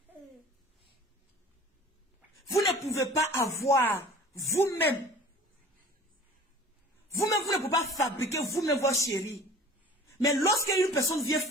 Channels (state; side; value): normal; both; correlation 0.45